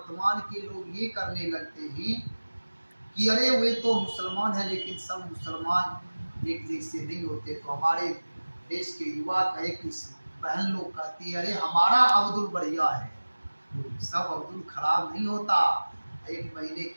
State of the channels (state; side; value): inverted; both; correlation -1.00